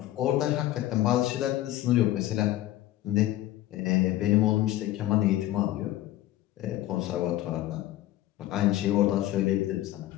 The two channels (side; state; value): right; quieter; 14.9 dB